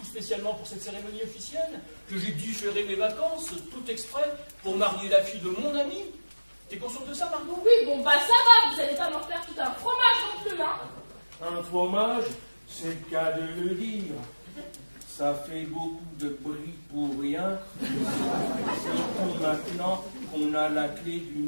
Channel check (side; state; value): both; inverted; correlation -1.00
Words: spécialement pour cette cérémonie officielle? Que j'ai différé mes vacances, tout exprès, pour marier la fille de mon ami? T'es consciente de ça, Margot? Oui, bon, bah ça va, vous allez pas m'en faire tout un fromage non plus, hein. Un fromage, c'est le cas de le dire. Ça fait beaucoup de bruit pour rien. Surtout maintenant qu'on a la clé du